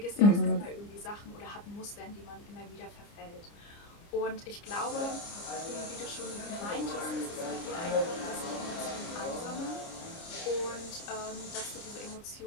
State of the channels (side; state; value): right; late; 29 ms